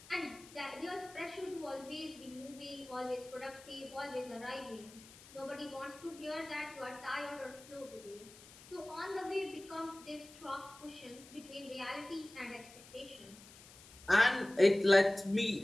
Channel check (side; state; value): left; noise; hiss, 20 dB below the sound